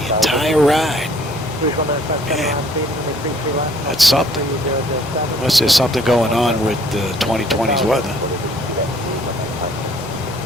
entire ride. Man, that's something. Unless there's something going on with the 2020's weather.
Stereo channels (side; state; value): both; normal; correlation 0.59